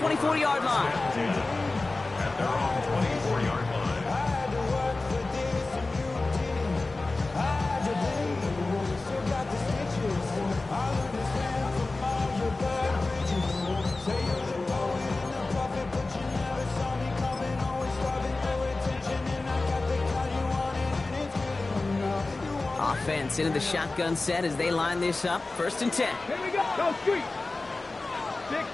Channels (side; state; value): right; quieter; 3.3 dB